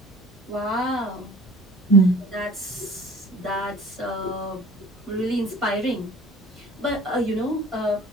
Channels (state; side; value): normal; both; correlation 0.46